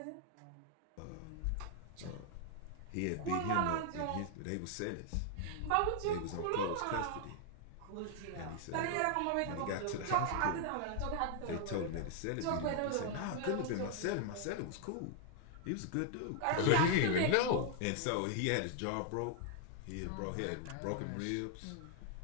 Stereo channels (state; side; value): different; both; correlation 0.00